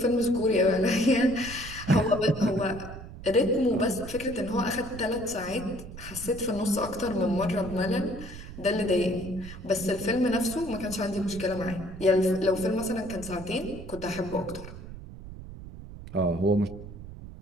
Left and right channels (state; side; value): noise; right; rumble, 13 dB below the sound